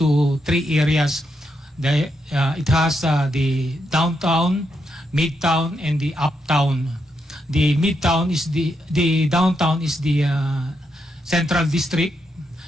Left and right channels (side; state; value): both; normal; correlation 0.82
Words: 3 areas. It has the downtown, midtown, and the uptown. The midtown is the downtown is the central district.